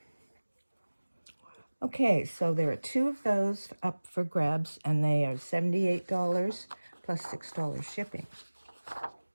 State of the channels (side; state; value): both; inverted; correlation -1.00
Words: Okay, so there are 2 of those up for grabs, and they are $78 plus $6 shipping.